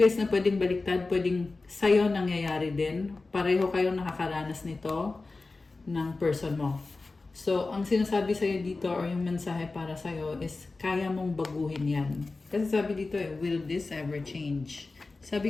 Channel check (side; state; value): right; quieter; 3.6 dB